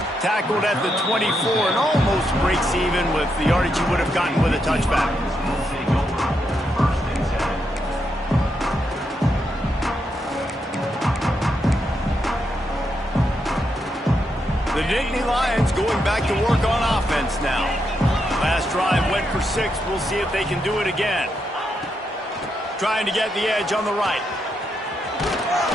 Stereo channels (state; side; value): normal; both; correlation 0.81